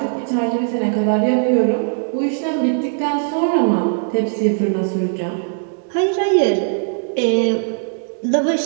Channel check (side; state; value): left; silent; digital silence